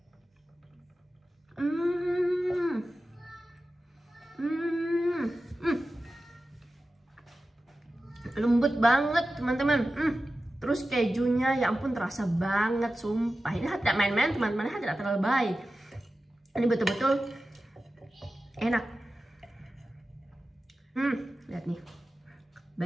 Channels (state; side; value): normal; both; correlation 0.94